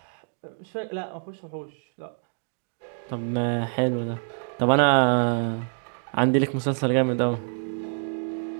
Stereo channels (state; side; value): silent; left; digital silence